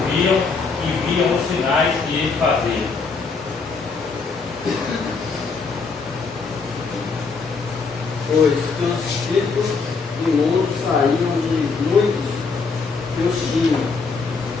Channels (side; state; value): right; quieter; 4.6 dB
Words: e viam os sinais que ele fazia. Pois que os espíritos imundos saíam de muitos que os tinham,